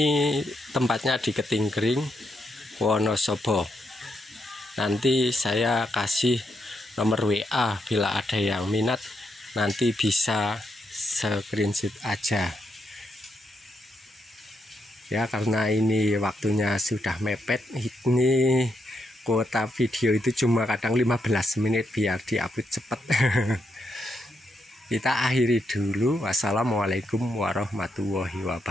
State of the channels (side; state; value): both; normal; correlation 0.80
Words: tempatnya di Ketinggering, Wonosobo. Nanti saya kasih nomor WA bila ada yang minat, nanti bisa screenshot aja. Ya, karena ini waktunya sudah mepet, ini kuota video itu cuma kadang 15 menit biar diupload cepat. Kita akhiri dulu. Wassalamualaikum warahmatullahi